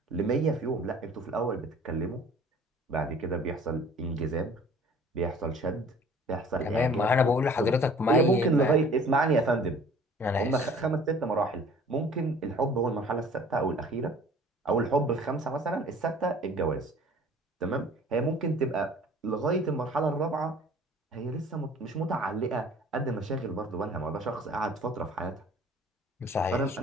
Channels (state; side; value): normal; both; correlation 0.50